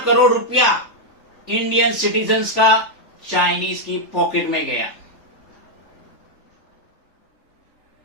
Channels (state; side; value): late; right; 3.4 ms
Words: करोड़ रुपया इंडियन सिटीजन्स का चाइनीज की पॉकेट में गया।